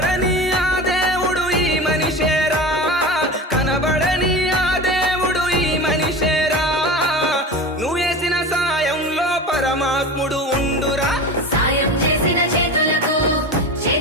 ఆ దేవుడు ఈ మనిషేరా. కనబడని ఆ దేవుడు ఈ మనిషేరా. నువ్వు వేసిన సాయంలో పరమాత్ముడు ఉండురా. సాయం చేసిన చేతులకు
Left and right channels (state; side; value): normal; both; correlation 0.30